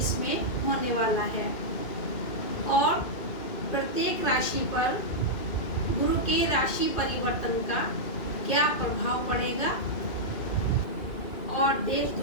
में होने वाला है और प्रत्येक राशि पर गुरु के राशि परिवर्तन का क्या प्रभाव पड़ेगा और देश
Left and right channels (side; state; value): right; late; 2.6 ms